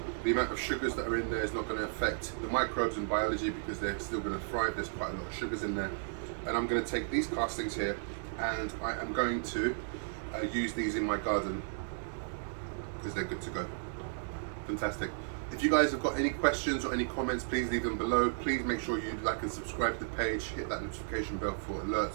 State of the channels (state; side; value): silent; left; digital silence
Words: The amount of sugars that are in there is not going to affect the microbes and biology because they're still going to thrive. There's quite a lot of sugars in there. And I'm going to take these castings here and I am going to use these in my garden because they're good to go. Fantastic. If you guys have got any questions or any comments, please leave them below. Please make sure you like and subscribe to the page, hit that notification bell for